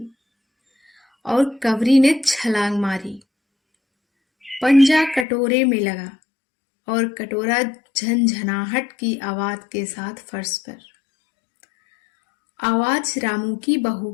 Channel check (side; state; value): right; drops out; at 5.2 s